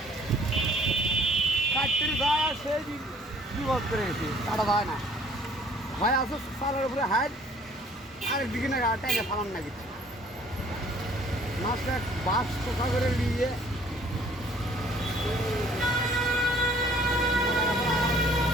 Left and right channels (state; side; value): normal; both; correlation 0.57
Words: কাটতে যায় আর সেই বিপদ করে গেছে কাটা যায় না হয় আসো সালের উপরে হাইট আরেকদিকে না টাইনে ফালান না কিছু মাছটা বাস কোথা করে নিয়ে